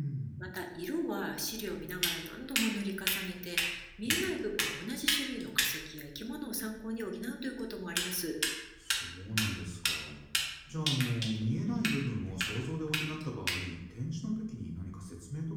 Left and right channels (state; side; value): identical; both; correlation 1.00